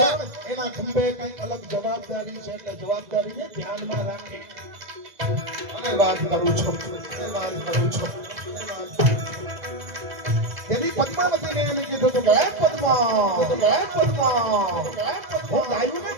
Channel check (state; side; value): late; left; 2.0 ms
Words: એના ખંભે કઈ અલગ જવાબદારી છે. એટલે જવાબદારીને ધ્યાનમાં રાખી અને વાત કરું છું. તેની પદ્માવતીને એને કીધું હતું કે પદ્મા હું ગાયોને